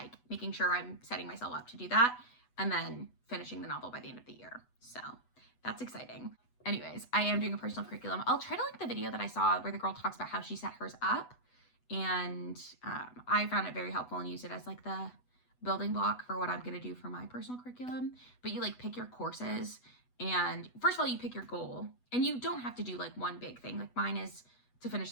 making sure I'm setting myself up to do that and then finishing the novel by the end of the year. So that's exciting. Anyways, I am doing a personal curriculum. I'll try to link the video that I saw where the girl talks about how she set hers up, and I found it very helpful and used it as like the building block for what I'm going to do for my personal curriculum. But you like pick your courses, and first of all, you pick your goal, and you don't have to do like one big thing. Like mine is to finish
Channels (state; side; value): late; right; 8.1 ms